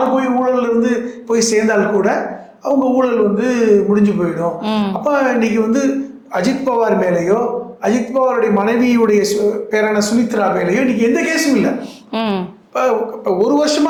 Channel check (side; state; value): both; identical; correlation 1.00